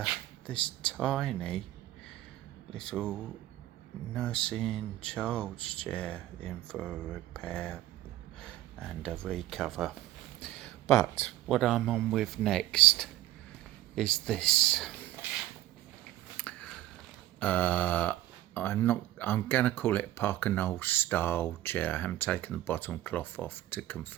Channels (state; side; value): quieter; left; 14.9 dB